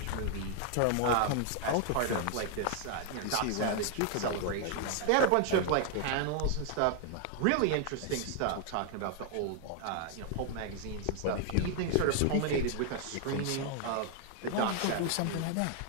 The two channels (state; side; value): different; both; correlation 0.00